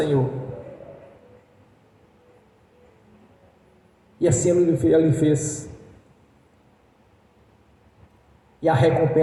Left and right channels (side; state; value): both; identical; correlation 1.00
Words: E assim ele fez. E a